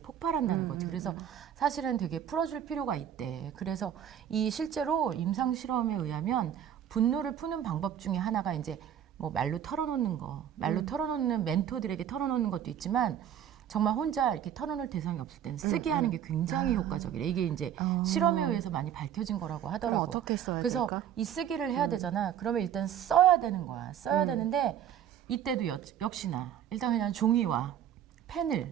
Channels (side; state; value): left; quieter; 9.8 dB